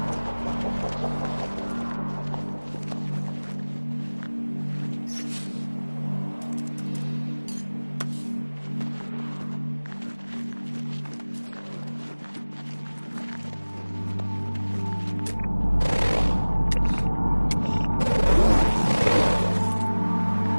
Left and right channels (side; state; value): both; inverted; correlation -1.00